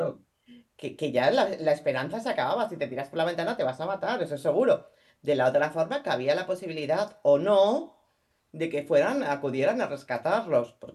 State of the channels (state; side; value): identical; both; correlation 1.00